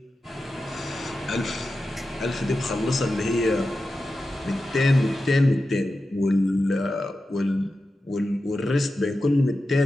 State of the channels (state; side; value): normal; both; correlation 0.92